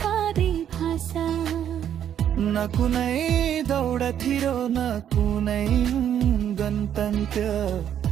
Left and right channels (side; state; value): left; quieter; 9.8 dB